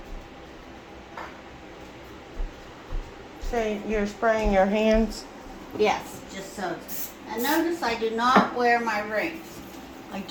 So you're spraying your hands? yes, just so. And notice I do not wear my rings. I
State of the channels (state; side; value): identical; both; correlation 1.00